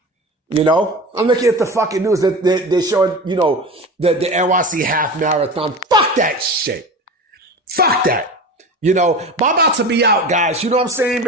I'm looking at the fucking news that they're showing, the NYC half marathon. Fuck that shit. Fuck that. But I'm about to be out, guys. You know what I'm saying?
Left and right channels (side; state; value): both; normal; correlation 0.31